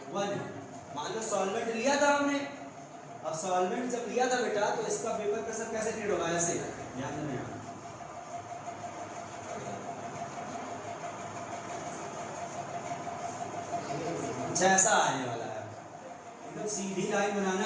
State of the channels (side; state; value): both; identical; correlation 1.00